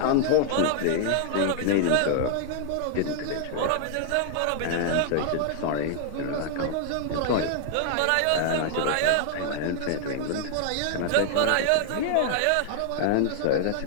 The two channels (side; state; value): both; different; correlation 0.00